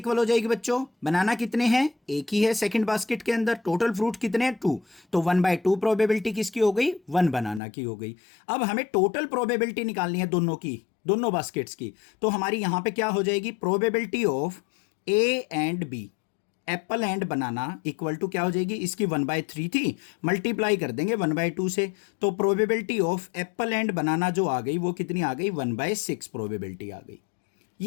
हो जाएगी बच्चों, बनाना कितने हैं, एक ही है सेकंड बास्केट के अंदर, टोटल फ्रूट कितने हैं, 2। तो 1/2 प्रोबेबिलिटी किसकी हो गई, 1 बनाना की हो गई। अब हमें टोटल प्रोबेबिलिटी निकालनी है दोनों की, दोनों बास्केट्स की। तो हमारी यहां पे क्या हो जाएगी, probability of A and B, apple and banana equal to क्या हो जाएगी, इसकी 1/3 थी, मल्टीप्लाई कर देंगे 1/2 से। तो प्रोबेबिलिटी ऑफ एप्पल एंड बनाना जो आ गई वो कितनी आ गई, 1/6 प्रोबेबिलिटी आ गई।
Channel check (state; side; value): drops out; right; at 7.6 s